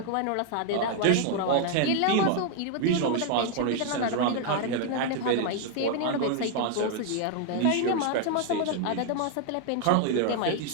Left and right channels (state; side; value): different; both; correlation 0.00